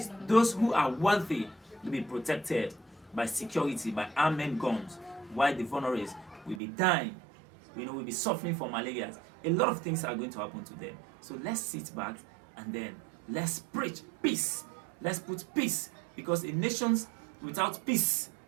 those who are wealthy, will be protected by security, by armed guns, while the vulnerables will be dying, will be suffering from malaria. A lot of things are going to happen to them. So let's sit back and then let's preach peace. Let's put peace, because in nations without peace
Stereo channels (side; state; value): left; drops out; at 6.6 s